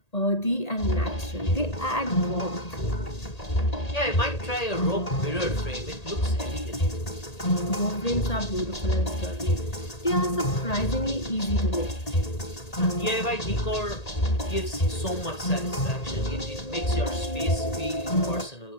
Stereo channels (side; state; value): right; late; 1.8 ms